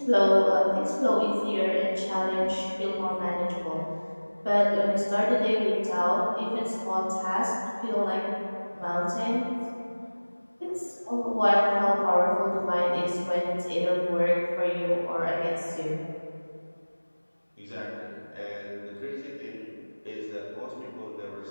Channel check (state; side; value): inverted; both; correlation -1.00